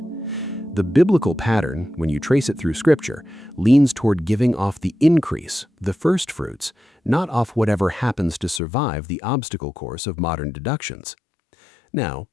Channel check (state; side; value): drops out; right; at 8.6 s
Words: The biblical pattern, when you trace it through Scripture, leans toward giving off the increase, the first fruits, not off whatever happens to survive the obstacle course of modern deductions. Now,